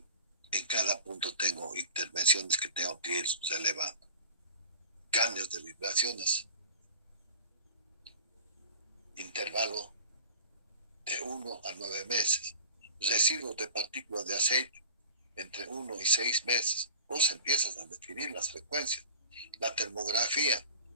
cada punto tengo intervenciones que tengo que ir relevando. Cambios de vibraciones, intervalo de 1 a 9 meses, residuos de partículas de aceite entre 1 y 6 meses. Vos empiezas a definir las frecuencias. La termografía,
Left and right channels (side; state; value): both; inverted; correlation -0.38